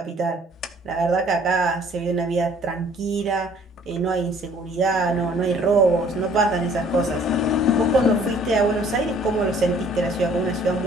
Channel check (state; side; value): normal; both; correlation 0.57